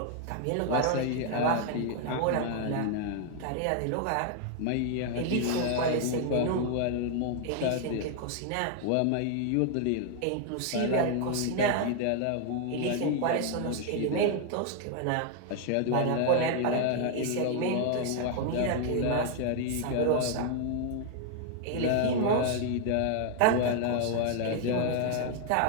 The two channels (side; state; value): both; different; correlation 0.00